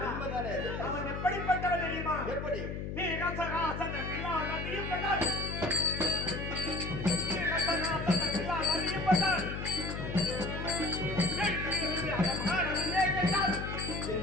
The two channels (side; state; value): left; noise; hum, 5 dB below the sound